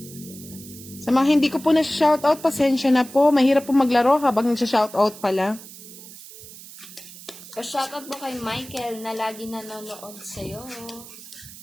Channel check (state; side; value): noise; right; hiss, 16 dB below the sound